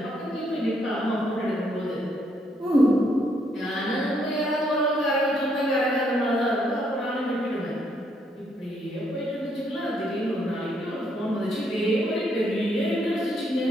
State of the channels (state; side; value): normal; both; correlation 0.73